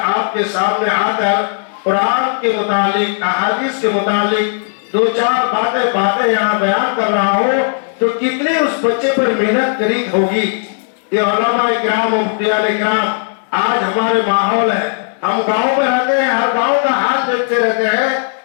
آپ کے سامنے آ کر قرآن کے متعلق احادیث کے متعلق 2-4 باتیں یہاں بیان کر رہا ہو تو کتنی اس بچے پر محنت کری ہوگی۔ یہ علماء کرام و مفتیان کرام آج ہمارے ماحول ہے، ہم گاؤں میں رہتے ہیں، ہر گاؤں کا حال دیکھتے رہتے ہیں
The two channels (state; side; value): silent; right; digital silence